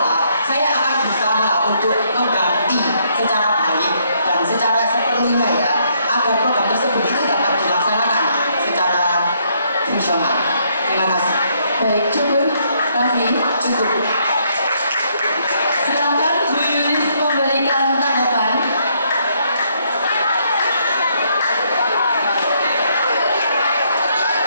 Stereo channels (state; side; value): inverted; both; correlation -0.71